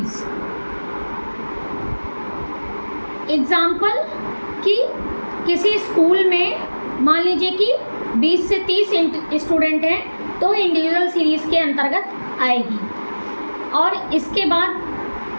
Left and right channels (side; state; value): both; inverted; correlation -1.00